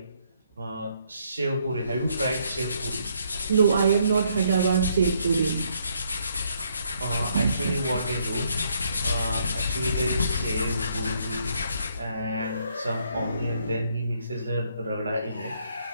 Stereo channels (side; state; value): both; inverted; correlation -0.70